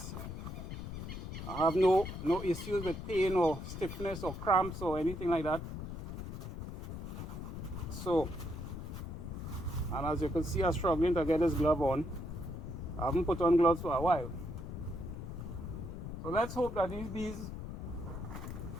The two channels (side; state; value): left; noise; rumble, 7 dB below the sound